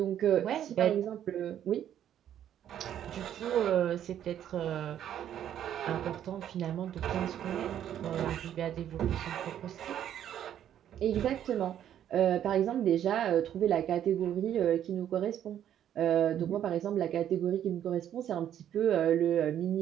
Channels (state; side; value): quieter; left; 10.5 dB